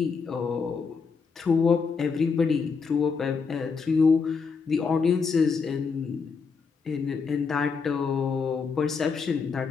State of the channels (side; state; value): right; quieter; 5.3 dB